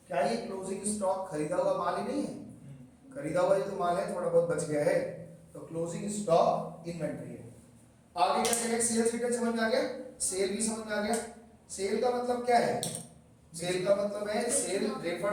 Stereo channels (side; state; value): both; identical; correlation 1.00